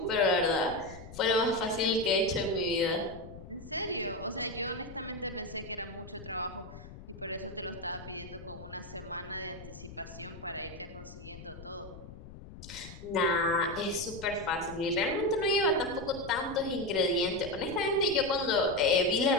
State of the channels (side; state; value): left; noise; rumble, 15 dB below the sound